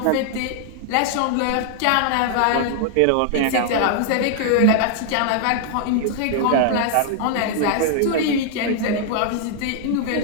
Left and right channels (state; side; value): different; both; correlation 0.00